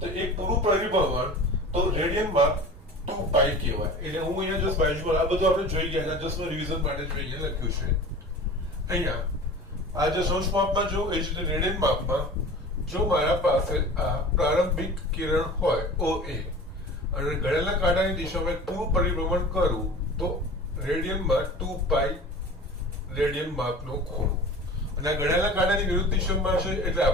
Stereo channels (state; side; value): normal; both; correlation 0.38